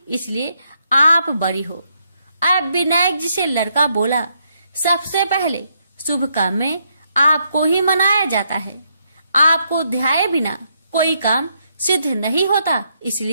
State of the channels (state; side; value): inverted; both; correlation -0.76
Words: इसलिए आप बड़ी हो। अब विनायक जी से लड़का बोला, सबसे पहले शुभ काम में आपको ही मनाया जाता है। आपको ध्याये बिना कोई काम सिद्ध नहीं होता,